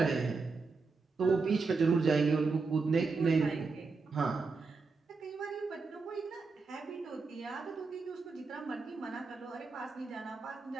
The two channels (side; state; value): left; quieter; 4.3 dB